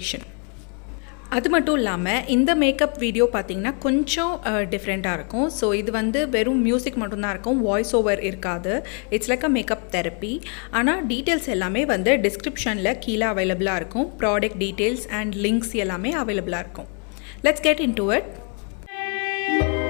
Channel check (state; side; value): quieter; right; 39.0 dB